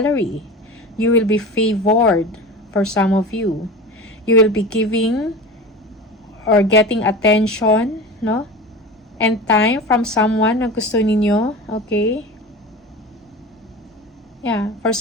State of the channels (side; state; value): both; normal; correlation 0.31